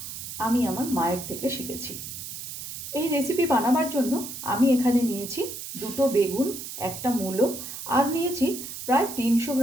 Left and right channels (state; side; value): noise; right; hiss, 9 dB below the sound